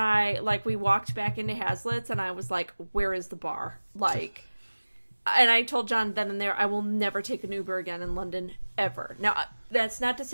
we walked back into Hazlitt's. And I was like, where is the bar? Like, and I told John then and there, I will never take an Uber again in London, ever. Now, that's not to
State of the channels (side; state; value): both; inverted; correlation -1.00